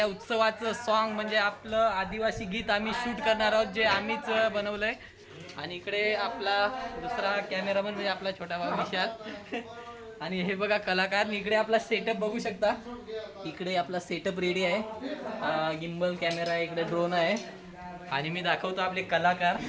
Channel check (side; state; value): both; identical; correlation 1.00